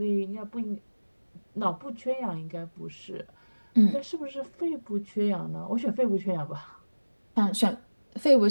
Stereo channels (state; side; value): inverted; both; correlation -1.00